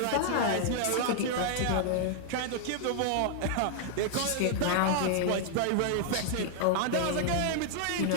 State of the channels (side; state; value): both; different; correlation 0.00